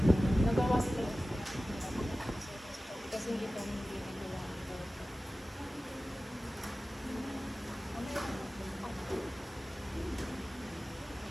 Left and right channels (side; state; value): both; normal; correlation 0.96